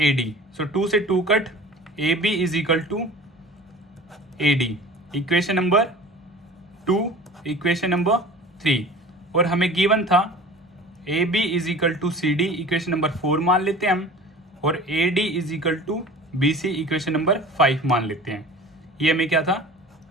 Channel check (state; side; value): normal; both; correlation 0.41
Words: so 2 से 2 cut, AB is equal to AD। Equation number 2, equation number 3, और हमें given था AB is equal to CD, equation number 4 मान लेते हैं हम, और AD is equal to BC, equation number 5 मान लेते हैं। ये हमें क्या था